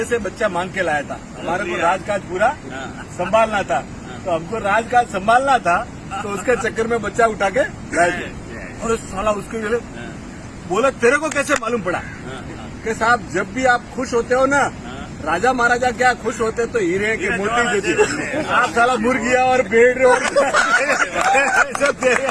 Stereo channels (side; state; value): both; identical; correlation 1.00